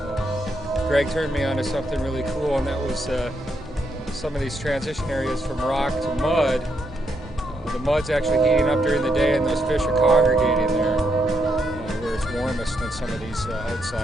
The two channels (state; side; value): normal; both; correlation 0.78